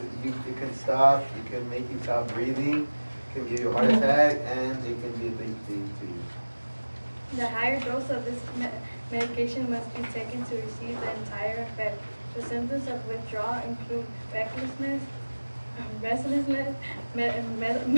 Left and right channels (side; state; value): both; inverted; correlation -1.00